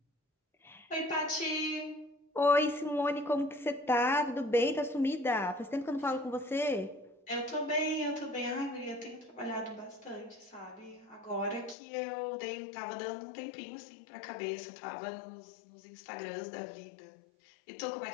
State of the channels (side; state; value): right; drops out; at 11.8 s